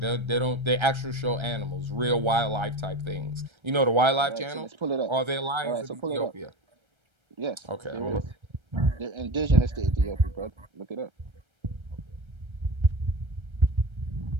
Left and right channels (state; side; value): late; left; 1.3 ms